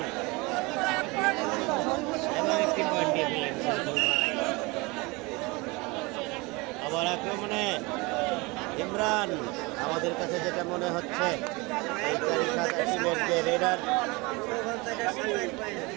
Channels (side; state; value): left; quieter; 25.3 dB